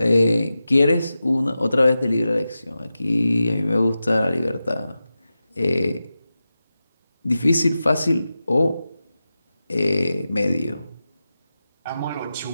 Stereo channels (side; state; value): both; inverted; correlation -0.93